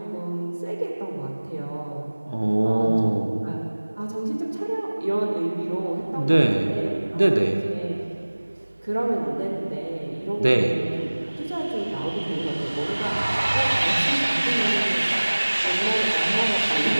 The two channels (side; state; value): both; inverted; correlation -1.00